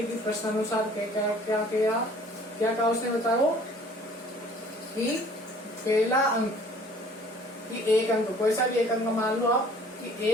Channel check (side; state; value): both; normal; correlation 0.53